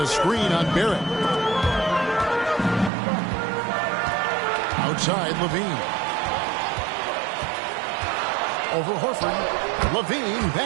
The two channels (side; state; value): left; drops out; at 2.9 s